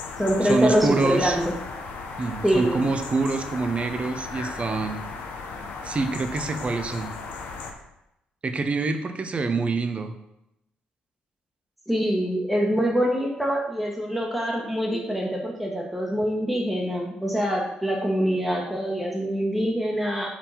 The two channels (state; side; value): normal; both; correlation 0.86